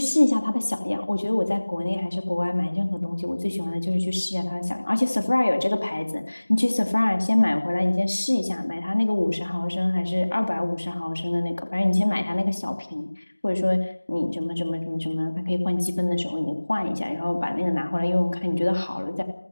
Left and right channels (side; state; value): both; inverted; correlation -1.00